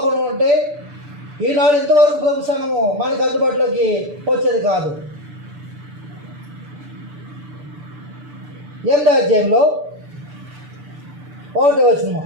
ఉంటే ఈనాడు ఇంతవరకు ప్రభు సంఘము మనకు అందుబాటులోకి వచ్చేది కాదు. 8వ అధ్యాయంలో 1వ వచనం,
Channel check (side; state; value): left; late; 6.9 ms